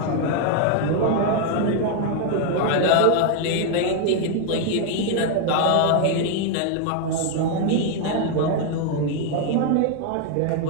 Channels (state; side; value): different; both; correlation 0.00